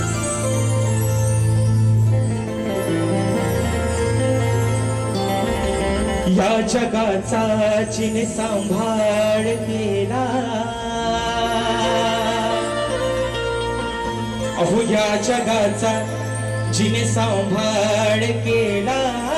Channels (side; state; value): both; identical; correlation 1.00